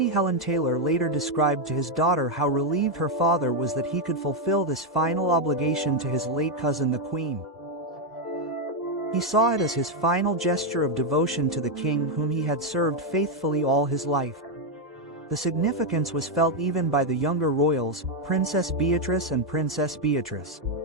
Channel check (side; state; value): both; normal; correlation 0.02